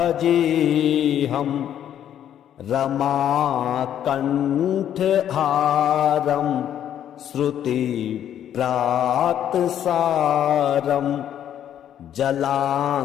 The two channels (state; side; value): quieter; right; 10.3 dB